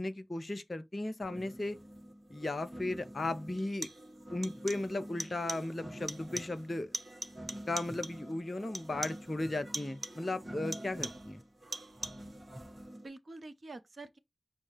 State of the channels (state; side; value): normal; both; correlation 0.94